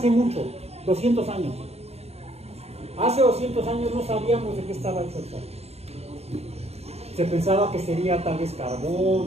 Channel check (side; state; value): left; late; 0.30 ms